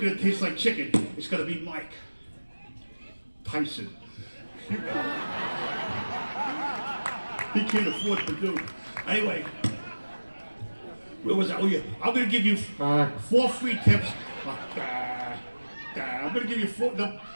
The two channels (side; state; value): both; inverted; correlation -1.00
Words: to taste like chicken, it's going to be Mike Tyson. He can't afford to do it. Anyway. Where was I? Oh yeah, I'm gonna give you 4 free tips. I'm gonna give you 4.